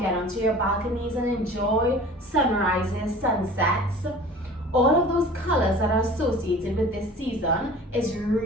get onto your balconies and enjoy sunrises, sunsets. All of those colors that are associated with this season is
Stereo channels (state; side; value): normal; both; correlation 0.43